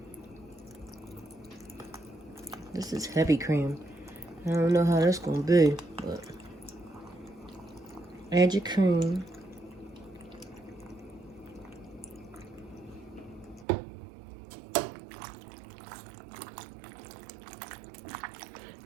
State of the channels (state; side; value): drops out; left; at 13.7 s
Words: This is heavy cream. I don't know how that's gonna be, but add your cream.